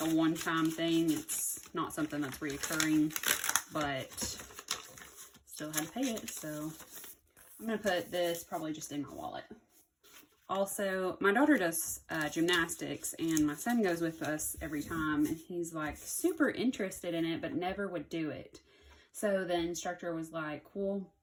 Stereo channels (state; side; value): identical; both; correlation 1.00